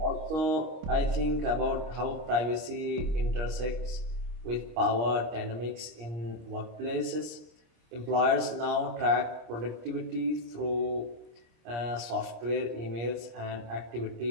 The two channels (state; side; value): late; left; 26 ms